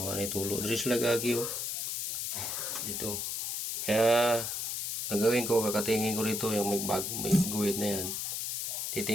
man tulo. Diri sila gagi oh. Dito. Kaya gagawin ko, kakatingin ko rito yung may guhit na yan.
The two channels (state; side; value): noise; left; hiss, 2 dB below the sound